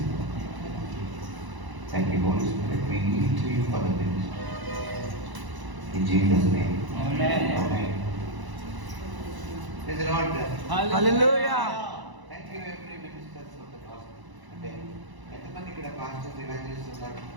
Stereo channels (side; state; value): left; late; 1.0 ms